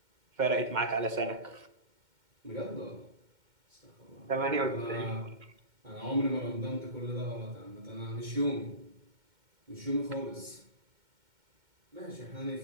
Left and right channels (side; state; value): left; late; 2.1 ms